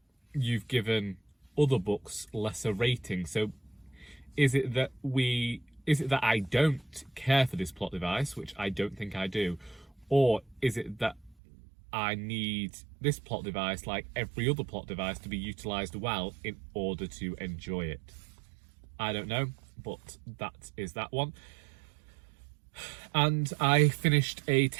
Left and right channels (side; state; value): left; drops out; at 11.4 s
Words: you've given other books lesser rating, so is it that I don't care for this plot device, which I don't think I do, or is it that I need this plot device, like every other plot device, to be utilised well in order to enjoy it? I don't know, but that is that one. And I finished a